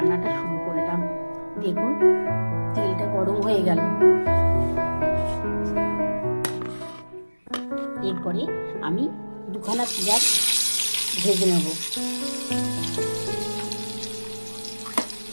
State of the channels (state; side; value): inverted; both; correlation -1.00